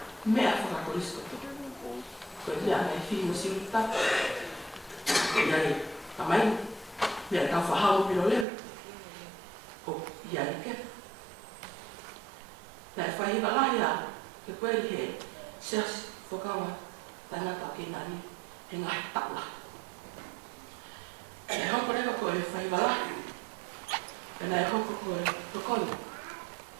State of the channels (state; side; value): drops out; left; at 8.5 s